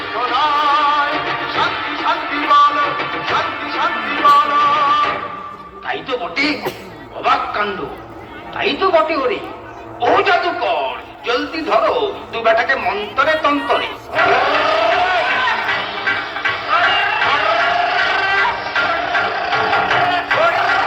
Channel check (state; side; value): identical; both; correlation 1.00